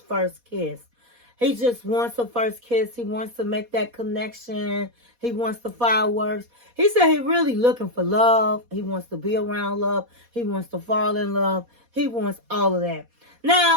kiss. He just wants a first kiss. He wants to make that connection. He wants the fireworks. He said he really looking for love. He wants to be around love. He wants to fall in love. He wants all of that.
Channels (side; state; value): left; late; 4.1 ms